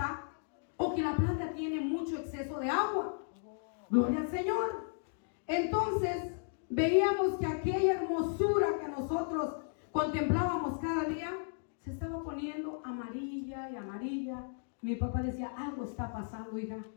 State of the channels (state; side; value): silent; right; digital silence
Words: o que la planta tiene mucho exceso de agua. Gloria al Señor. Entonces veíamos que aquella hermosura que nosotros contemplábamos cada día se estaba poniendo amarilla y amarilla. Mi papá decía, algo está pasando, hija.